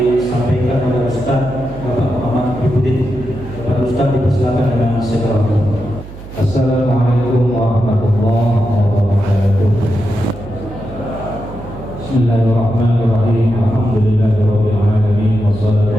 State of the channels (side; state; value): right; noise; hum, 15 dB below the sound